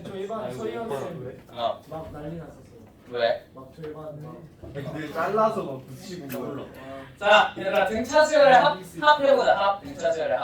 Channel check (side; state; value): both; identical; correlation 1.00